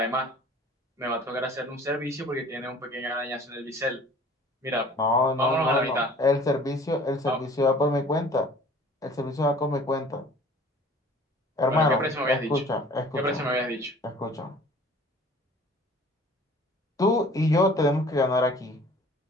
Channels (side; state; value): both; normal; correlation 0.49